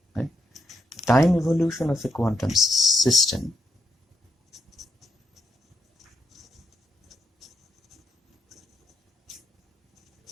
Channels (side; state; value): both; normal; correlation 0.80